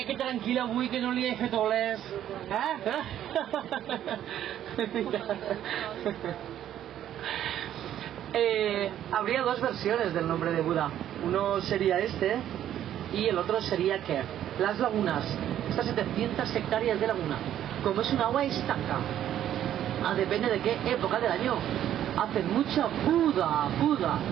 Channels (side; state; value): left; quieter; 11.2 dB